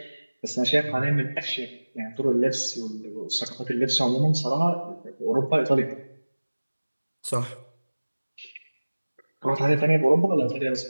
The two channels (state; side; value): inverted; both; correlation -1.00